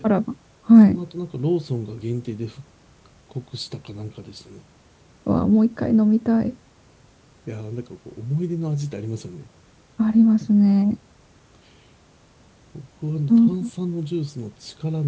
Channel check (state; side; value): identical; both; correlation 1.00